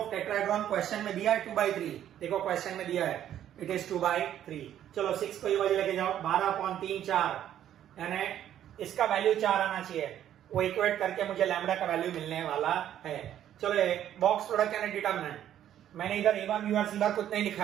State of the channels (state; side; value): quieter; left; 11.0 dB